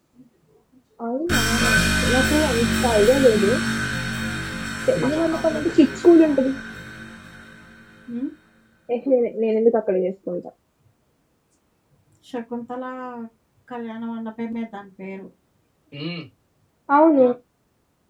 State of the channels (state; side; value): identical; both; correlation 1.00